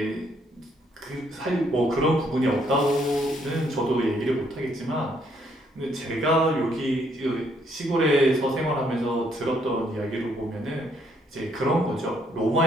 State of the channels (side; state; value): both; normal; correlation 0.70